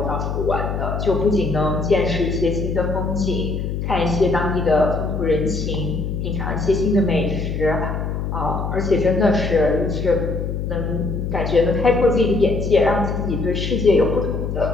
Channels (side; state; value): left; noise; hum, 3 dB below the sound